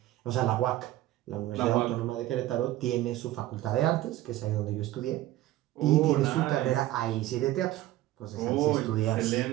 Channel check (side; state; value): left; quieter; 15.4 dB